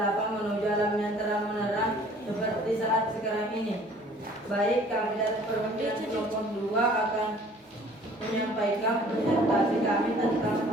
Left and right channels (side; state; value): both; normal; correlation 0.53